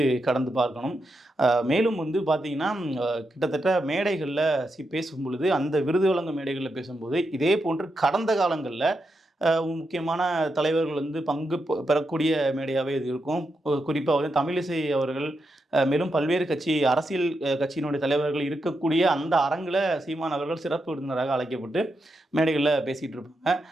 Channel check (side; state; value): both; normal; correlation 0.85